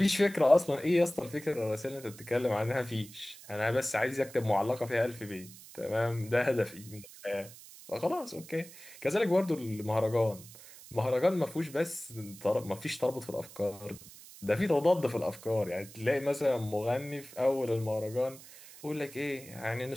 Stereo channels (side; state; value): right; noise; hiss, 18 dB below the sound